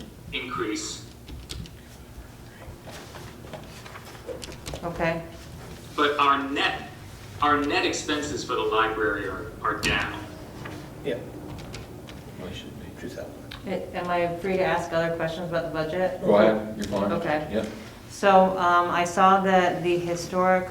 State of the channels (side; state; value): both; identical; correlation 1.00